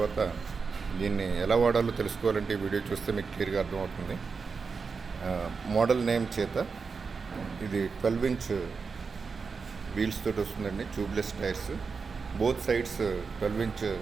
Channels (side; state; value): left; quieter; 5.1 dB